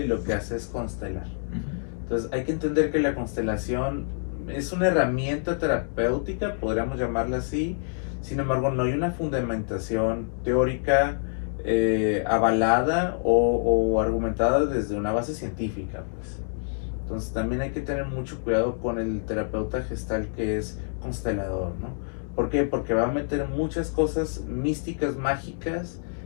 lo que hace es constelar. Entonces hay que entender que la constelación es una herramienta terapéutica, podríamos llamarla así. Sin embargo, no hay una fundamentación teórica avalada o argumentada desde una base científica, pues. Entonces también hay que tener mucho cuidado con el terapeuta gestal que es constelador, ¿no? ¿Por qué? Porque va a meter muchas cosas místicas, mágicas,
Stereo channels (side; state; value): right; silent; digital silence